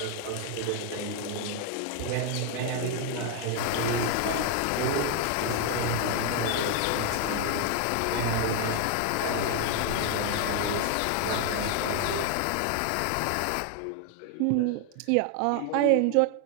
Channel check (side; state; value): both; different; correlation 0.00